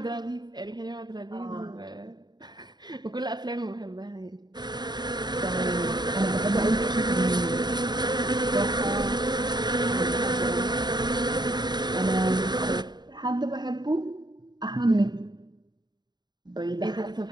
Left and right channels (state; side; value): late; left; 0.21 ms